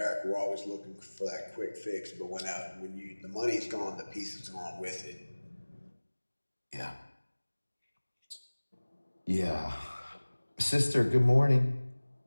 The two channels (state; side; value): inverted; both; correlation -1.00